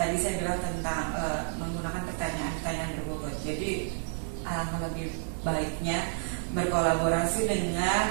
saya bilang tentang menggunakan pertanyaan-pertanyaan berbobot. Jadi alangkah lebih baiknya berkolaborasi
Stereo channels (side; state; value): left; silent; digital silence